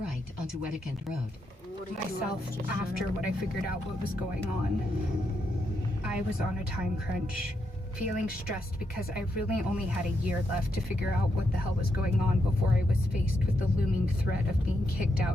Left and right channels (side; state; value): both; normal; correlation 0.81